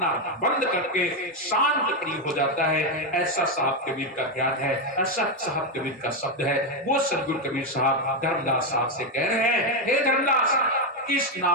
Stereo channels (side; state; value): both; normal; correlation 0.06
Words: बंद करके शांत प्रिय हो जाता है। ऐसा साहब कबीर का ज्ञान है, ऐसा साहब कबीर का शब्द है। वो सदगुरु कबीर साहब धर्मदास साहब से कह रहे हैं, हे धर्मदास, किस